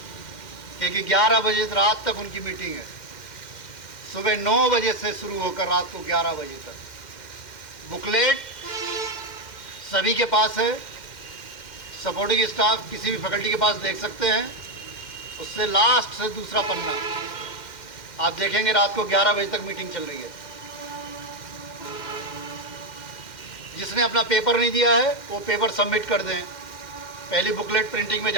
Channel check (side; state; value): right; late; 2.1 ms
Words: क्योंकि 11 बजे रात तक उनकी मीटिंग है, सुबह 9 बजे से शुरू होकर रात को 11 बजे तक। बुकलेट सभी के पास है, सपोर्टिंग स्टाफ किसी भी फैकल्टी के पास देख सकते हैं। उससे लास्ट से दूसरा पन्ना आप देखेंगे, रात को 11 बजे तक मीटिंग चल रही है। जिसने अपना पेपर नहीं दिया है वो पेपर सबमिट कर दें। पहली बुकलेट प्रिंटिंग में